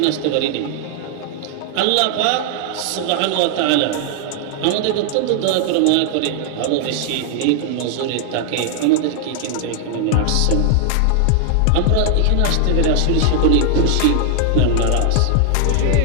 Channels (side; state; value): both; different; correlation 0.00